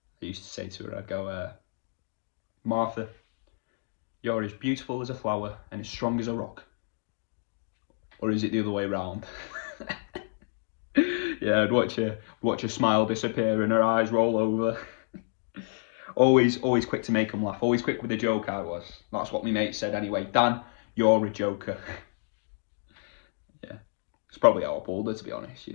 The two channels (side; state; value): right; silent; digital silence